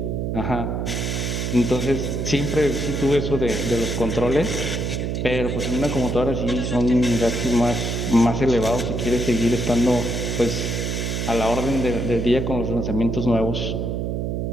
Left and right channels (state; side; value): noise; right; hum, 1 dB below the sound